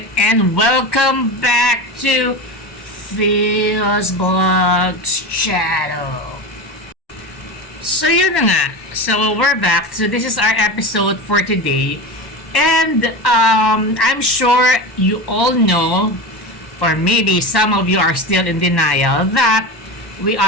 and welcome back to Bldg's channel. So yun na nga, so we're back. So this is our episode for today, and I'm sure you all know, or maybe some of you are still in denial, that we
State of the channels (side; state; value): right; late; 1.1 ms